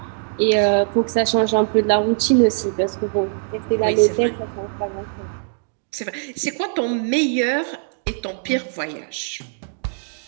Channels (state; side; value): silent; left; digital silence